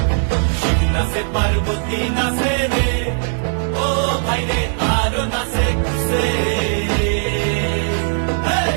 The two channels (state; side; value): silent; left; digital silence